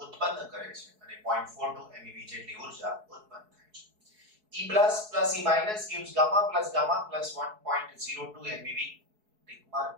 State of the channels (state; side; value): late; left; 4.7 ms